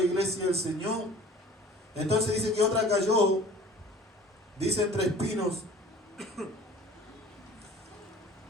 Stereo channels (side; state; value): both; normal; correlation 0.47